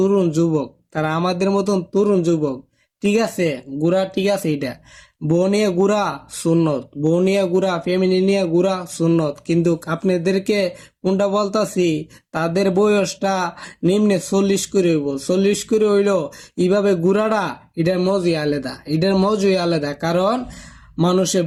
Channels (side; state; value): both; identical; correlation 1.00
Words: যুবক, তারা আমাদের মতন তরুণ যুবক। ঠিক আছে, ঘুরা ঠিক আছে, এটা বউ নিয়ে ঘুরা সুন্নত, বউ নিয়ে ঘুরা, ফ্যামিলি নিয়ে ঘুরা সুন্নত। কিন্তু আপনাদেরকে কোনটা বলতাছি, তাদের বয়সটা নিম্নে 40 করে হইব, 40 করে হইলো এইভাবে ঘুরাটা এটার মজই আলাদা, এটার মজই আলাদা। কারণ